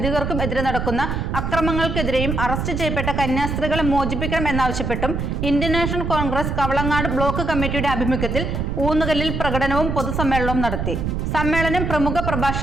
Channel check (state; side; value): noise; right; rumble, 2 dB below the sound